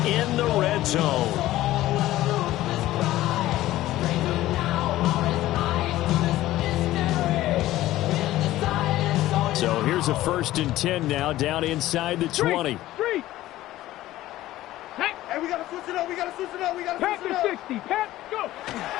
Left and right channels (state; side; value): quieter; right; 15.5 dB